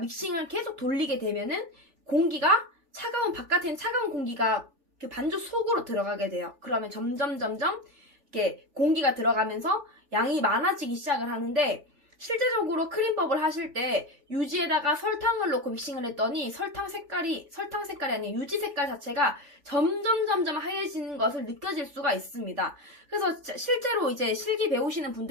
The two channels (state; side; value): late; left; 3.4 ms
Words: 계속 돌리게 되면은 공기가 바깥에는 차가운 공기가 그 반죽 속으로 들어가게 돼요. 그러면 점점 이렇게 공기가 들어가면서 양이 많아지기 시작을 하는데, 실제적으로 크림법을 하실 때 유지에다가 설탕을 넣고 믹싱을 했더니 설탕 색깔이 아니라 유지 색깔 자체가 점점 하얘지는 것을 느껴질 수가 있습니다. 그래서 실제로 이제 실기 배우시는